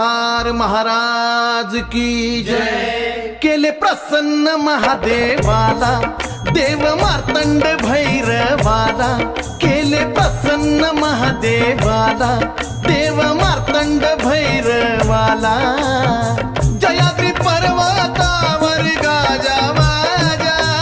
महाराज की जय। केले प्रसन्न महादेवाला देव मार्तंड भैरवाला, केले प्रसन्न महादेवाला देव मार्तंड भैरवाला। जयाद्री पर्वतावर गाजावाजा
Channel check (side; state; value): both; identical; correlation 1.00